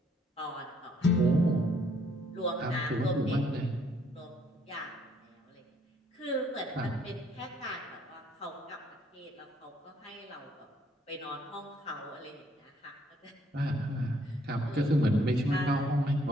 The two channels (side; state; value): both; normal; correlation 0.66